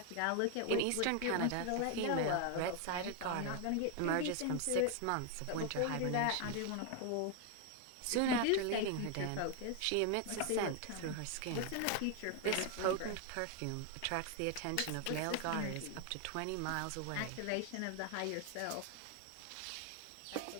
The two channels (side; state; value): both; different; correlation 0.01